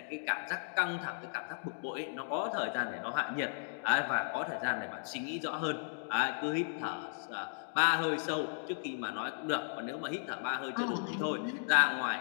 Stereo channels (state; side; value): silent; right; digital silence